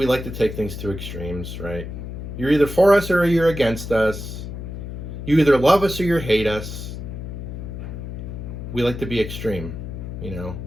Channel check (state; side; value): noise; left; hum, 8 dB below the sound